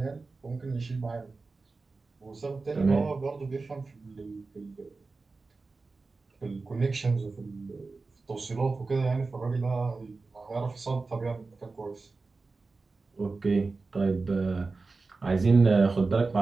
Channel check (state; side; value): quieter; left; 3.9 dB